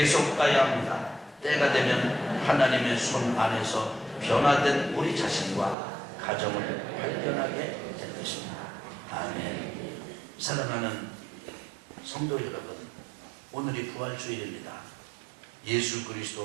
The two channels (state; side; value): drops out; left; at 5.8 s